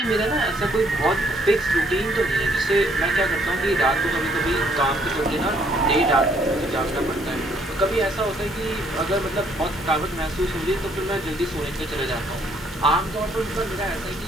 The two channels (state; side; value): normal; both; correlation 0.66